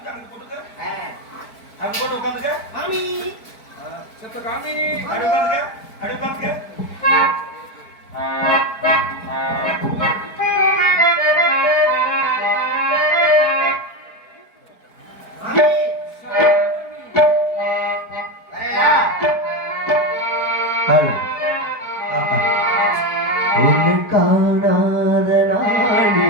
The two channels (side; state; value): right; late; 4.5 ms